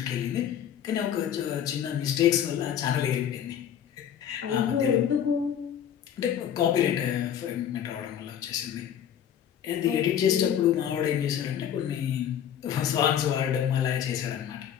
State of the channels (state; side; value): quieter; right; 9.4 dB